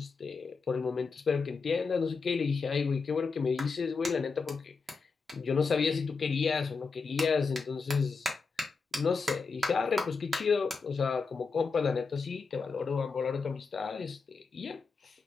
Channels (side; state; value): right; quieter; 4.7 dB